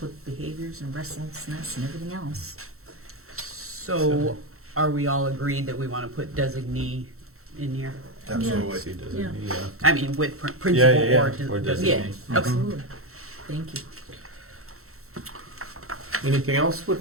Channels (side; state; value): left; late; 0.63 ms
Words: with behaviors and restlessness and everything else. So are we all agreed that we want to put designee in here? Absolutely. See, does it Yeah. need, I mean, with Yeah, principal yeah, or yeah, or designee? Yeah, Mhm. absolutely. Thank you. Anything else